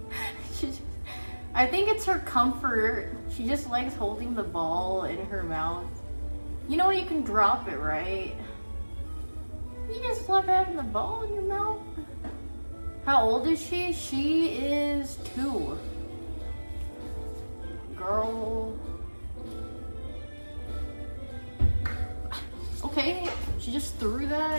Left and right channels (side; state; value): both; inverted; correlation -1.00